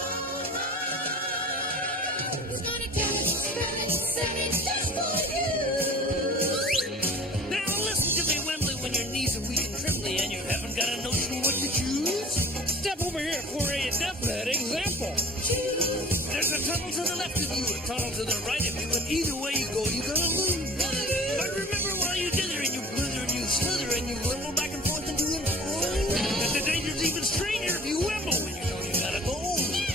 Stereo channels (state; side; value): normal; both; correlation 0.44